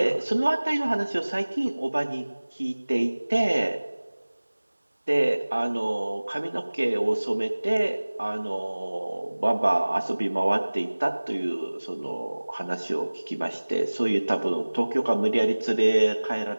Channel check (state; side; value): inverted; both; correlation -1.00